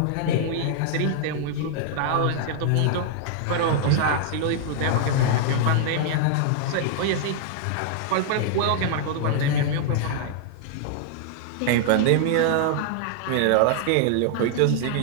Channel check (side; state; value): both; different; correlation -0.01